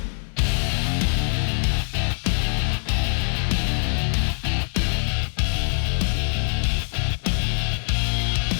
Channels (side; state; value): right; silent; 63 dB below the other